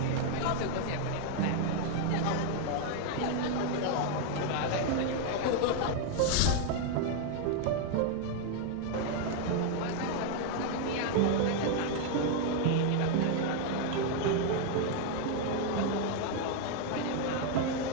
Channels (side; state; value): both; different; correlation 0.00